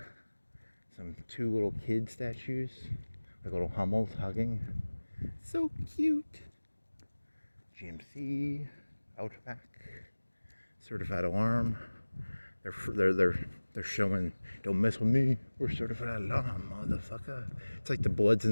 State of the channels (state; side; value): inverted; both; correlation -1.00